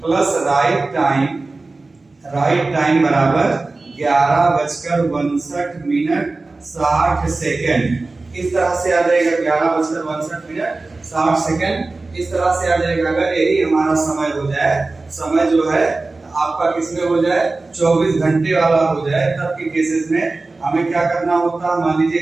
plus right time बराबर 11:62 इस तरह से आ जाएगा, 11:62 इस तरह से आ जाएगा। अगर यही हमारा समय हो जाए, समय जो है आपका किसमें हो जाए, 24 घंटे वाला हो जाए, तब के केसेस में हमें क्या करना होता है, मान लीजिए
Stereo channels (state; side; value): quieter; left; 3.4 dB